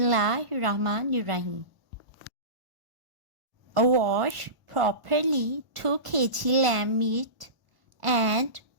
Wash properly 2 kg lamb meat and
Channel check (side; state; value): left; late; 1.0 ms